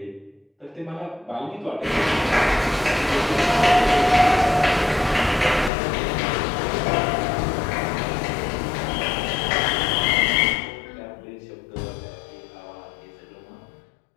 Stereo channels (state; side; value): drops out; right; at 5.7 s